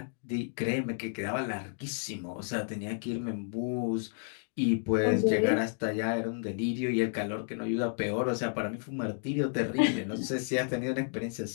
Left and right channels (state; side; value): silent; right; digital silence